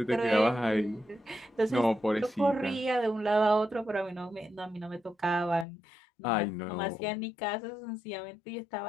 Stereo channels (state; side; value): drops out; right; at 5.7 s